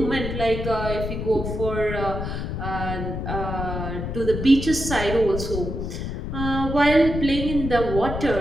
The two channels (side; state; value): left; noise; rumble, 4 dB below the sound